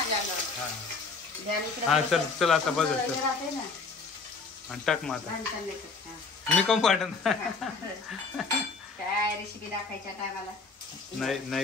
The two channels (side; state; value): right; quieter; 4.3 dB